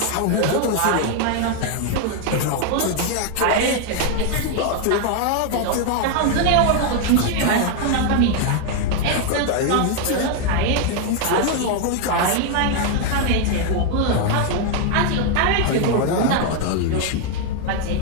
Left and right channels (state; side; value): different; both; correlation 0.01